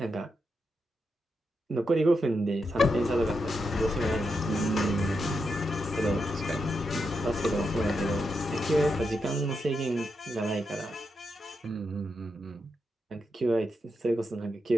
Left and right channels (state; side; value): normal; both; correlation 0.85